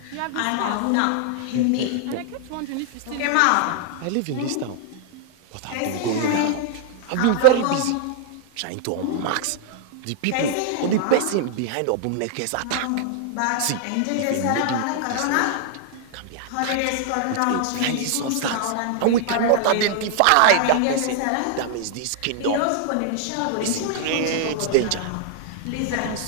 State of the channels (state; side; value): different; both; correlation 0.00